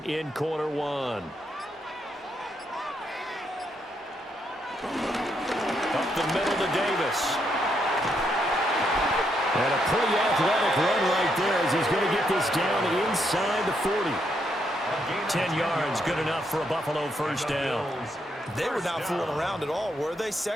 in quarter 1. Up the middle to Davis. And a pretty athletic run right there as he's going to get this down inside the 40. 10 yards, good enough for a Buffalo 1st down. They were not fooling around at all, were they?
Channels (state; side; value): normal; both; correlation 0.77